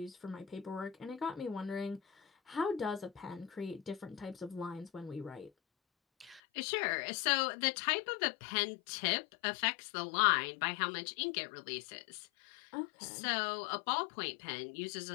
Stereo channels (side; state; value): right; drops out; at 6.4 s